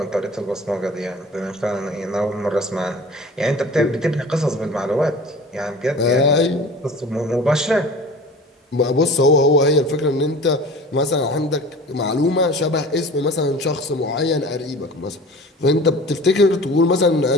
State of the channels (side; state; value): both; normal; correlation 0.41